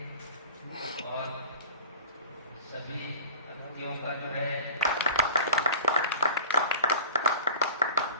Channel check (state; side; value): inverted; both; correlation -0.41